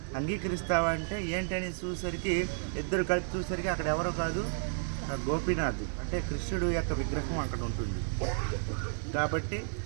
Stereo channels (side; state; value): left; silent; digital silence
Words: అంగీకరిస్తావా అంటే ఏంటని చూసరికి ఇద్దరు కలిపి చూసరికి అక్కడ ఎవరో కాదు, గోపీనాథ్ అంటే కృష్ణుడు యొక్క విగ్రహం అక్కడ ఉంటుంది. కాబట్టి